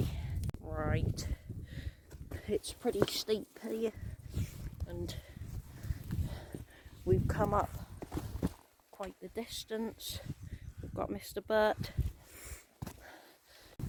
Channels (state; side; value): identical; both; correlation 1.00